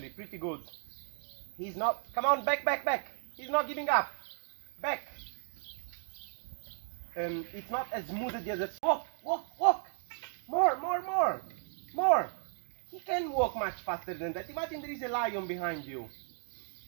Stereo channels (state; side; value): silent; left; 55 dB below the other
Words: pretty good. He's not. Come on, back, back, back. He's not giving up. Back. It's not as smooth as the other. Walk, walk, walk. More, more, more. More. He can walk much faster than that. Imagine there is a lion behind you.